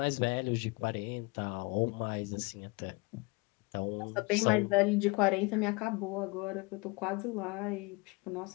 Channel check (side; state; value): right; quieter; 26.6 dB